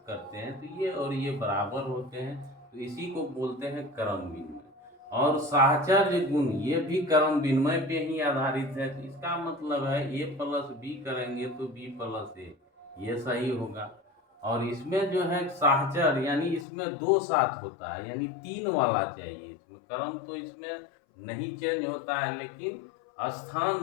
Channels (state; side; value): drops out; right; at 16.7 s